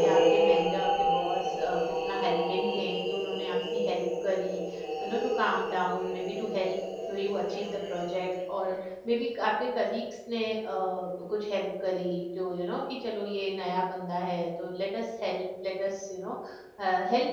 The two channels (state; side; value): identical; both; correlation 1.00